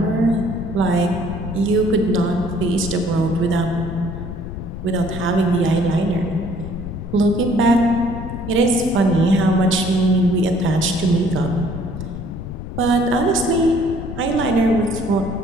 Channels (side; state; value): left; noise; rumble, 8 dB below the sound